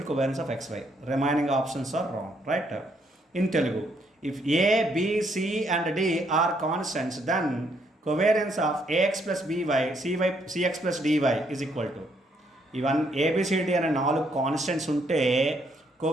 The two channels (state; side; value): normal; both; correlation 0.72